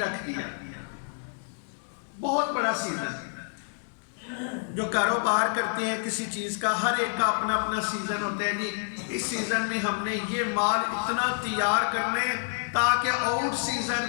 دیا، بہت بڑا سیزن۔ جو کاروبار کرتے ہیں کسی چیز کا، ہر ایک کا اپنا اپنا سیزن ہوتا ہے، جی اس سیزن میں ہم نے یہ مال اتنا تیار کرنے تاکہ آؤٹ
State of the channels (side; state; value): right; silent; 59 dB below the other